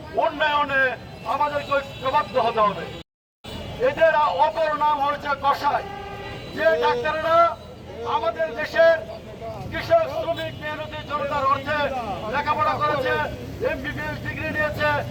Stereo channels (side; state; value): both; identical; correlation 1.00